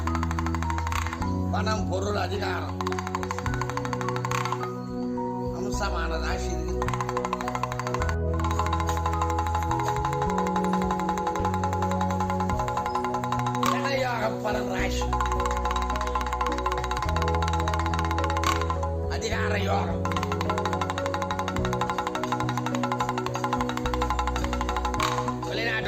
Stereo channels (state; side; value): identical; both; correlation 1.00